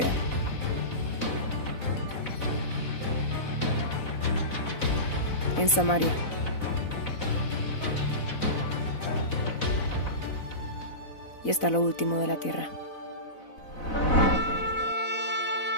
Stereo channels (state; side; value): late; right; 4.0 ms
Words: en Samaria, y hasta lo último de la tierra.